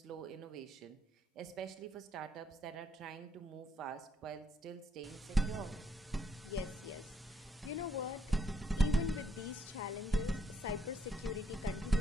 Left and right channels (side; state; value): both; normal; correlation 0.72